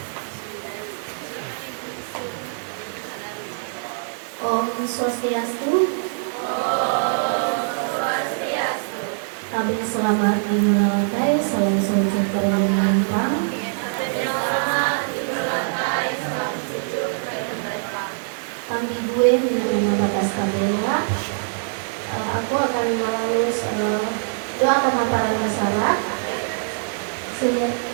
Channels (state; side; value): silent; left; digital silence